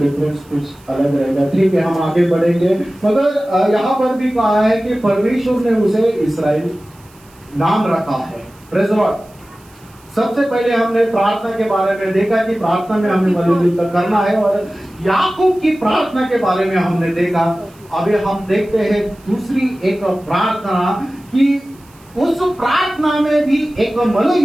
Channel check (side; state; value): right; noise; hiss, 29 dB below the sound